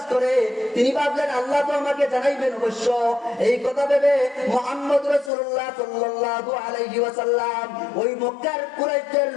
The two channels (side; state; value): right; drops out; at 5.3 s